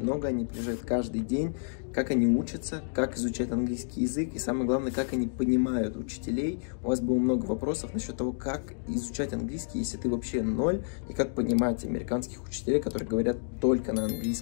много, они приезжают каждый день, как они учатся, как изучают английский язык и самое главное, как они понимают учителей. У вас было много вопросов насчет того, как изучать английский, если ты вообще ноль, и как понимать американских учителей, которые говорят только на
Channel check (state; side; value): silent; right; digital silence